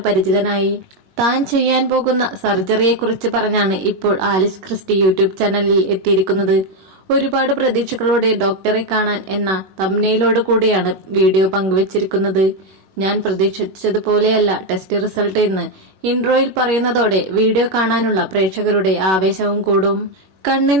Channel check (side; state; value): left; late; 21 ms